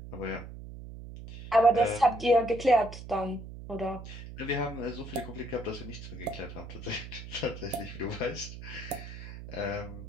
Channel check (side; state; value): right; noise; hum, 12 dB below the sound